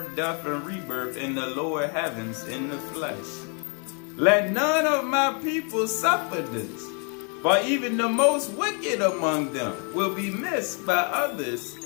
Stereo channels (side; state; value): right; quieter; 37.9 dB